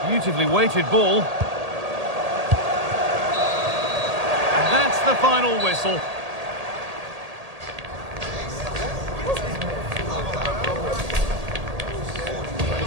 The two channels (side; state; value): left; late; 1.8 ms